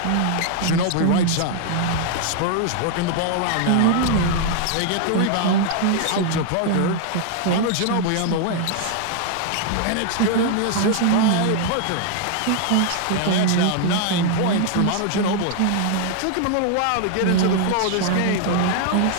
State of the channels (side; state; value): both; different; correlation 0.00